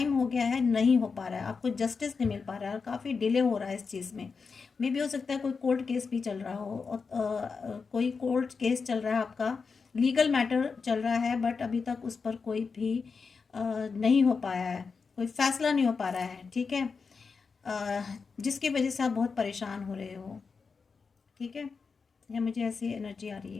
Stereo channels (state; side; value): quieter; right; 5.1 dB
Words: हो गया है, नहीं हो पा रहा है, आपको जस्टिस नहीं मिल पा रहा है, और काफ़ी डिले हो रहा है इस चीज़ में। मे भी हो सकता है कोई कोर्ट केस भी चल रहा हो, और कोई कोर्ट केस चल रहा है आपका, लीगल मैटर चल रहा है, बट अभी तक उस पर कोई भी नहीं हो पाया है, कोई फैसला नहीं हो पा रहा है, ठीक है। जिसकी वजह से आप बहुत परेशान हो रहे हो, ठीक है, या मुझे ऐसी एनर्जी आ रही